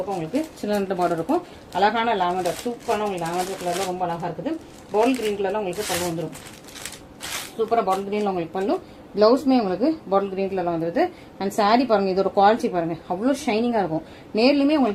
உங்களுக்கு சின்ன பார்டர் இருக்கும். அழகான லாவெண்டர் சூப்பரான உங்களுக்கு லாவெண்டர் கலர்ல ரொம்ப அழகா இருக்குது. பால் கிரீன் கலர்ல உங்களுக்கு பல்லு வந்துடும். சூப்பரா பாட்டில் கிரீன்ல உங்களுக்கு பல்லு. பிளவுஸ்மே உங்களுக்கு பாட்டில் கிரீன் கலர்ல வந்துருது. அண்ட் சாரி பாருங்க, இதோட குவாலிட்டி பாருங்க, அவ்வளோ ஷைனிங்கா இருக்கும். நேர்லயுமே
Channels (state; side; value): identical; both; correlation 1.00